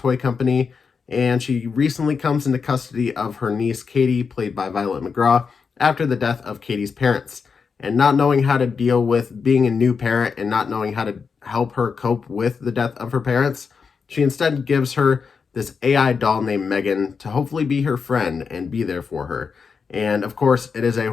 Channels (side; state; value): right; quieter; 5.6 dB